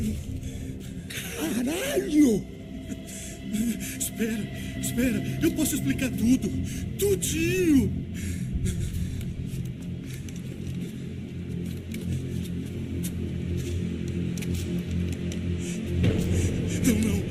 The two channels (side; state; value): both; identical; correlation 1.00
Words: Caralho! Espera, eu posso explicar tudo. Tudinho. Não,